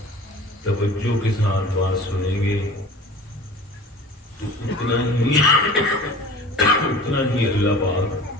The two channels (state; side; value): normal; both; correlation 0.41